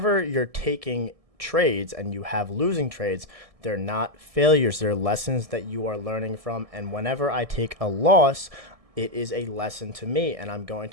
you're taking trades and you have losing trades, they're not failures. They're lessons that you are learning from. And whenever I take a loss, it is a lesson to me, and I'm going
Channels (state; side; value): late; left; 1.7 ms